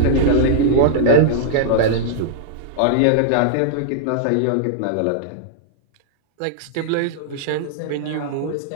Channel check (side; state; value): both; different; correlation -0.02